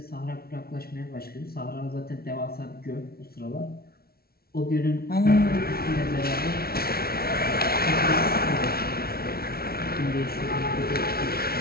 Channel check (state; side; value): late; right; 0.44 ms